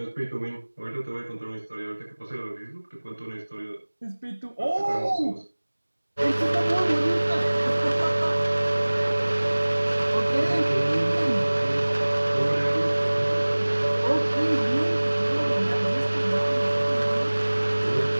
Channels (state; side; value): inverted; both; correlation -1.00